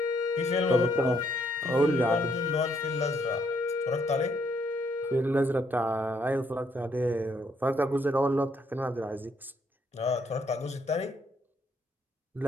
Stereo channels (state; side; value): normal; both; correlation 0.71